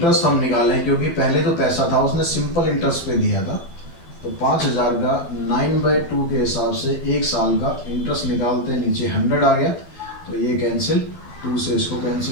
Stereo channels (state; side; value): late; right; 12 ms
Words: हम निकालें, क्योंकि पहले तो पैसा था उसने सिंपल इंटरेस्ट पे दिया था, तो 5000 का 9/2 के हिसाब से 1 साल का इंटरेस्ट निकालते हैं, नीचे 100 आ गया तो ये कैंसिल, 2 से इसको